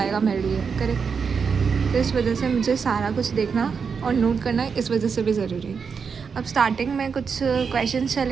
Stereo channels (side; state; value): left; quieter; 5.9 dB